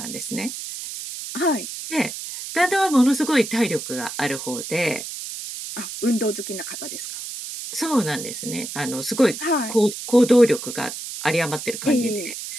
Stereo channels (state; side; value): noise; right; hiss, 8 dB below the sound